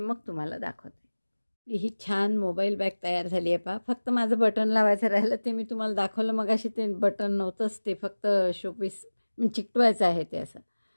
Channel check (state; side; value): inverted; both; correlation -1.00